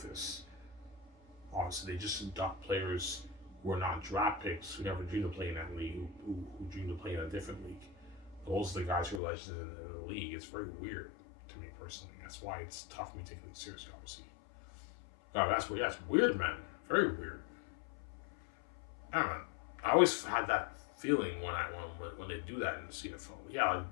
Obviously, they just induct players who are not draft picks, who never dreamed of playing in that league, who dreamed of playing in a different league. Those are the guys who are legends in the league. It's very weird to me personally. That's why it's tough for me to take league seriously, obviously. Oh, that's weird. That's weird, man. Very weird. I don't know. I always had that feeling when they do that in the CFL. Yeah,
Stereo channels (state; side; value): drops out; right; at 9.2 s